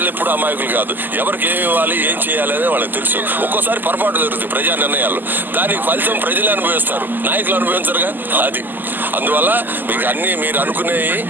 ఎప్పుడు అమాయకులు కాదు. ఎవరికి ఏమి ఇవ్వాలి, ఏం చేయాలి అనేది వాళ్ళకి తెలుసు. ఒక్కోసారి పొరపాటు జరుగుతుంది ప్రజా నిర్ణయాలు. దానికి ఫలితం ప్రజలే అనుభవిస్తారు, నాయకులు అనుభవించరుగా. అది అందువల్ల మీకు అన్ని మీరు అనుకునేవి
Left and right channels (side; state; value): left; late; 0.089 ms